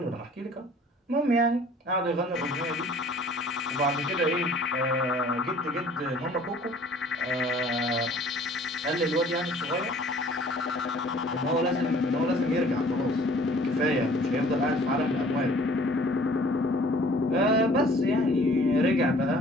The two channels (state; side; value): normal; both; correlation 0.53